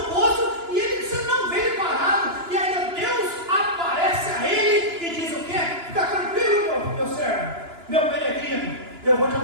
poço, e você não vê ele parado. E aí Deus aparece a ele e diz o quê? Fica tranquilo, meu servo, meu peregrino, eu vou te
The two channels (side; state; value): left; late; 2.9 ms